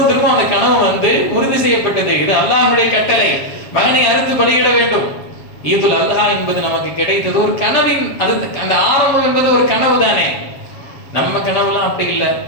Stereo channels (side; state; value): right; late; 7.3 ms